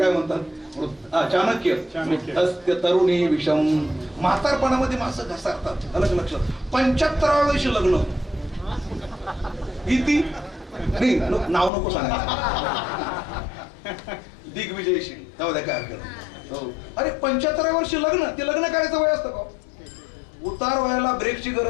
म्हणतात, चाणक्य, वृद्धस्य तरुणी विषम. म्हातारपणामध्ये माणसं घसरतात. अलग लक्षात. 75व्या वर्षी लग्न. किती नाही, नाव नको सांगायचं. दिग्विजयशी जाऊ द्या, काय हरकत. हो, अरे 75व्या वर्षी लग्न, ते लग्न करायचं वय असतं का? उतार व्हायला ब्रेकची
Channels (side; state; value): right; drops out; at 11.7 s